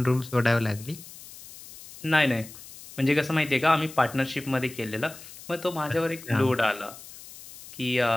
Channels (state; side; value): noise; left; hiss, 17 dB below the sound